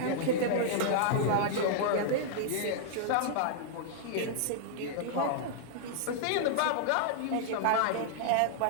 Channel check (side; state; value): both; different; correlation -0.01